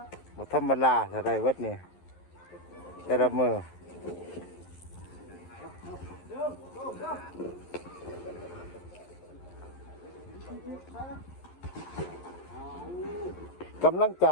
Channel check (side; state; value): right; late; 11 ms